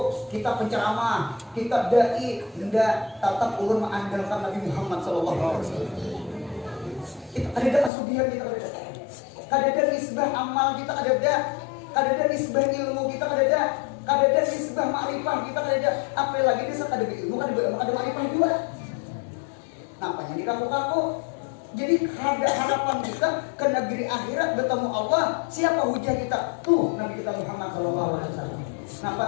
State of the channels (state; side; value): drops out; right; at 7.9 s